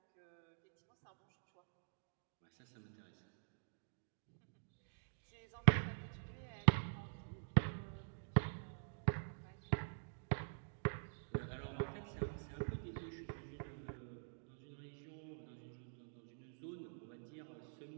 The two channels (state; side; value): silent; left; digital silence